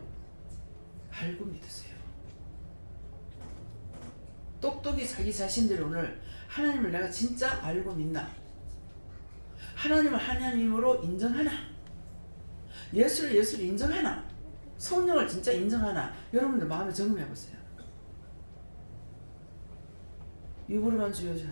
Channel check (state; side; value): inverted; both; correlation -1.00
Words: 알고 믿으세요. 똑똑히 자기 자신들이 오늘 하나님을 내가 진짜 알고 믿나? 하나님을 하나님으로 인정하나? 예수를 인정하나? 성령을 진짜 인정하나? 여러분들 마음에 점검해 보세요. 입으로만 주여주여